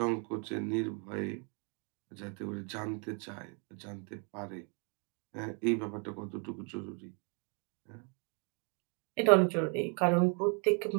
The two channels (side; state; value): left; quieter; 37.7 dB